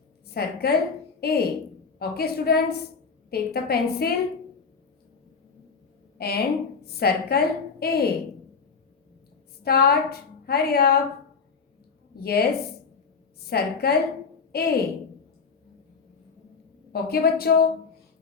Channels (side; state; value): right; quieter; 5.3 dB